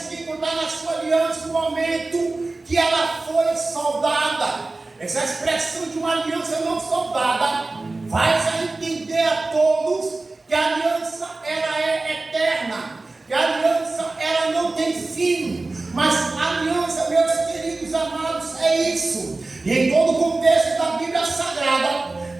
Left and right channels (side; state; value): left; quieter; 3.3 dB